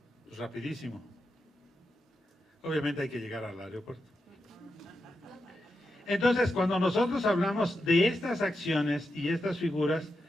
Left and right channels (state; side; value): normal; both; correlation 0.87